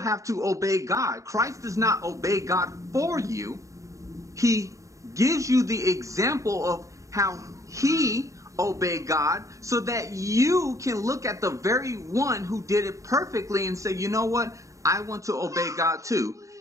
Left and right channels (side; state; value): left; late; 0.16 ms